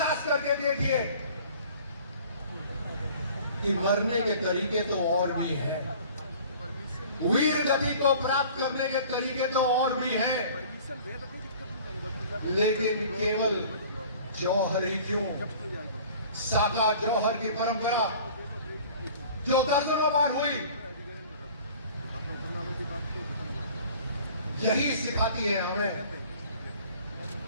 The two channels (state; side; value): inverted; both; correlation -0.47